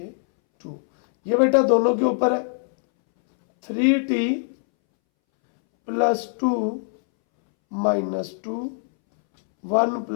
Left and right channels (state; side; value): silent; right; 64 dB below the other